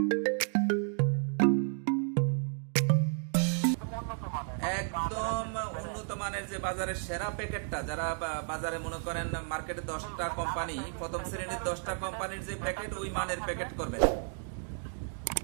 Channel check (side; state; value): left; silent; 56 dB below the other